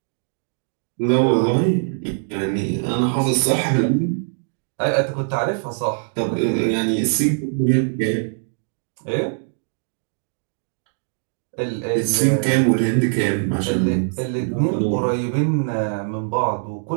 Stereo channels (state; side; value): silent; left; digital silence